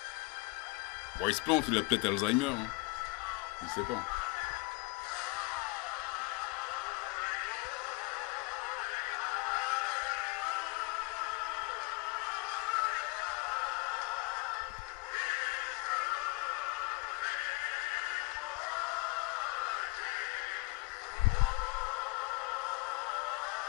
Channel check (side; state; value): right; quieter; 27.0 dB